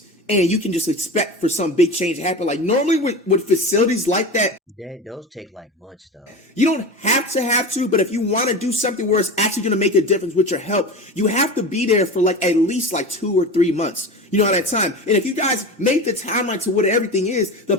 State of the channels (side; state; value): both; normal; correlation 0.29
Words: and you can just expect for some big change to happen. Like normally with facilities like that, those take like months though. you don't have to, but if you want to do something where it's actually going to make a difference with your health, you have to be there for like at least like 2 or 3 months. You know, at that time. And if you guys make the timeline to what everything is, the